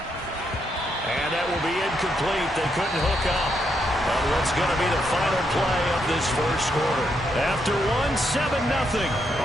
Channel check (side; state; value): both; normal; correlation 0.78